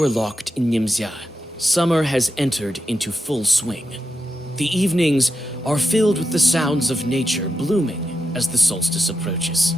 locked in Nimzia, summer has entered into full swing. The evenings are filled with the sounds of nature blooming as the solstice approaches.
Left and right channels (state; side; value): normal; both; correlation 0.87